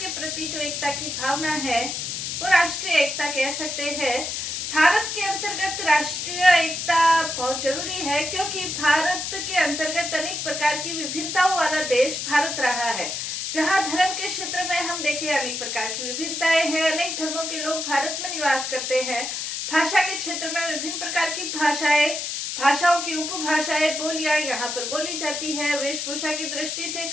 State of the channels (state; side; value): noise; left; hiss, 4 dB below the sound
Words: प्रति जो एकता की भावना है वो राष्ट्रीय एकता कह सकते हैं। भारत के अंतर्गत राष्ट्रीय एकता बहुत जरूरी है क्योंकि भारत के अंतर्गत अनेक प्रकार की विभिन्नताओं वाला देश भारत रहा है। जहाँ धर्म के क्षेत्र में हम देखें अनेक प्रकार की विभिन्नताएं हैं, अनेक धर्मों के लोग भारत में निवास करते हैं। भाषा के क्षेत्र में विभिन्न प्रकार की भाषाओं की उपभाषाएं बोलियां यहाँ पर बोली जाती है। वेशभूषा की दृष्टि से,